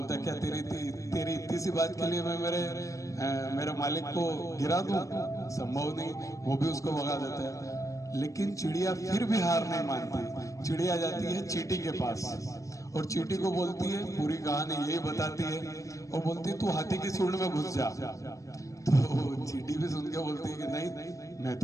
है, क्या तेरी इतनी सी बात के लिए मैं मेरे मालिक को गिरा दूं? संभव नहीं। वो भी उसको भगा देता है। लेकिन चिड़िया फिर भी हार नहीं मानती। चिड़िया जाती है चींटी के पास और चींटी को बोलती है, पूरी कहानी यही बताती है, और बोलती है तू हाथी की सूंड में घुस जा। तो चींटी भी सुन के बोलती है कि नहीं, मैं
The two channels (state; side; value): late; right; 0.16 ms